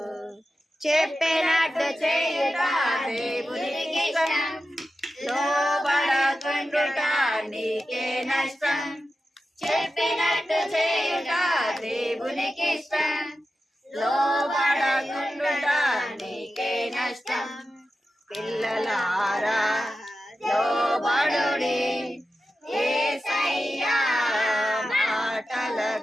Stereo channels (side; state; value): both; normal; correlation 0.92